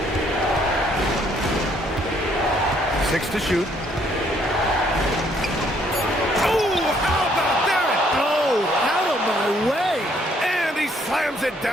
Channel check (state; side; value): normal; both; correlation 0.67